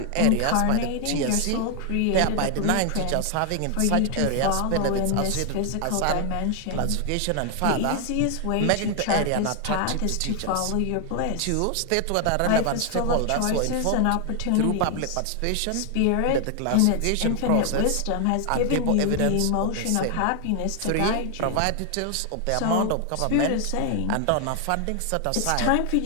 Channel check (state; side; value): different; both; correlation 0.00